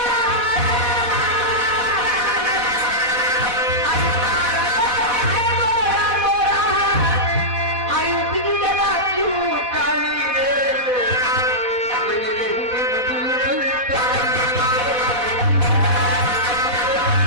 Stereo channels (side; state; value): left; late; 4.1 ms